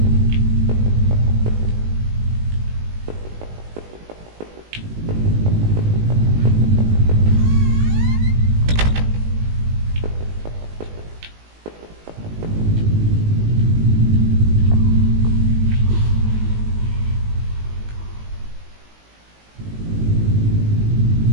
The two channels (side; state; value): left; late; 19 ms